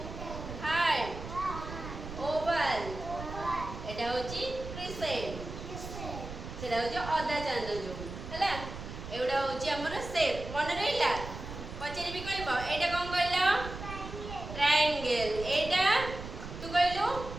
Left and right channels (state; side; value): noise; right; rumble, 10 dB below the sound